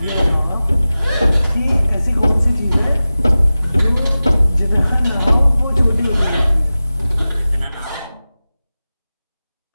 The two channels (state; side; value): inverted; both; correlation -0.96